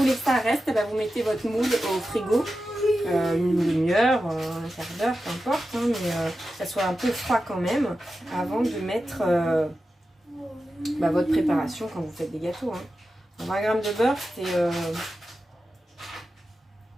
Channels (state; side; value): normal; both; correlation 0.92